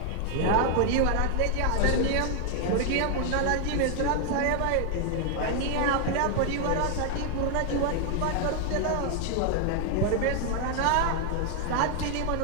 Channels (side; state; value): both; different; correlation 0.00